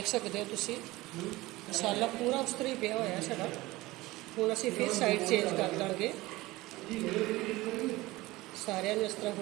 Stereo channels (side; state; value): left; quieter; 19.6 dB